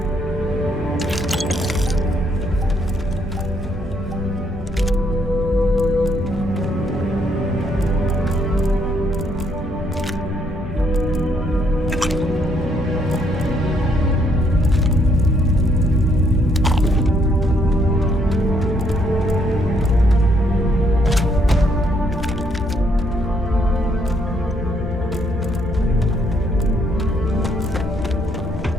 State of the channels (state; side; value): normal; both; correlation 0.71